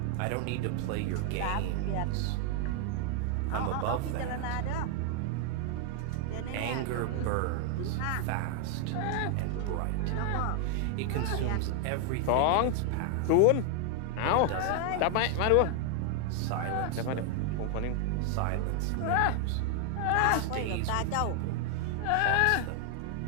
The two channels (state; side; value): different; both; correlation 0.00